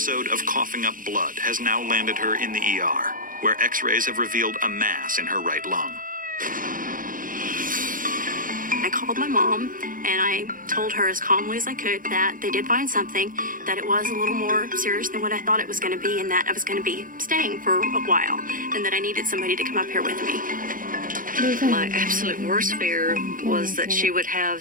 of coughing up blood has now landed her in the ER, where x-rays have revealed a mass in her right lung. I called my mom and I told her as calmly as I could that they did find something, that it was a little more serious than what I thought it was going to be, and that I was going to be staying for a while, and that I needed somebody to come up here with me. My absolute worst fear was that she would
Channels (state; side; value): late; left; 0.40 ms